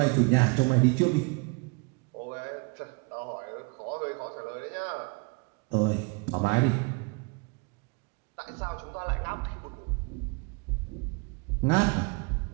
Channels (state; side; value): quieter; left; 28.7 dB